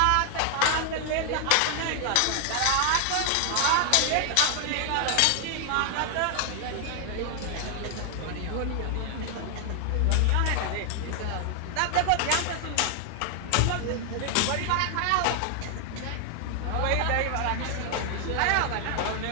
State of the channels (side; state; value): both; different; correlation 0.00